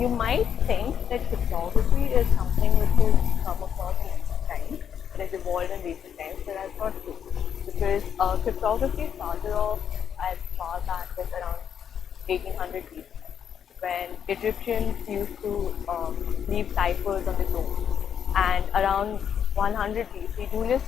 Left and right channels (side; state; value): right; quieter; 8.4 dB